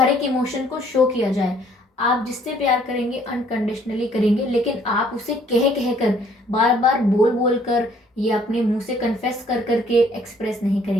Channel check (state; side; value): normal; both; correlation 0.62